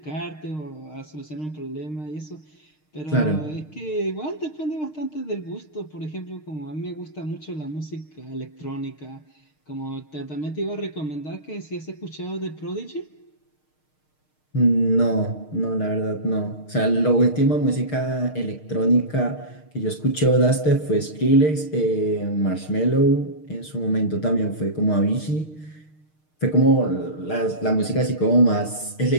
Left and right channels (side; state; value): right; late; 6.5 ms